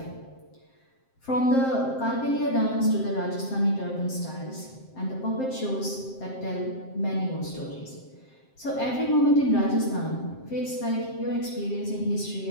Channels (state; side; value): late; right; 7.6 ms